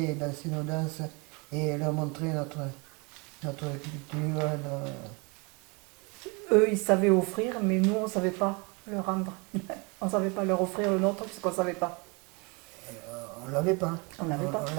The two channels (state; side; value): quieter; left; 30.0 dB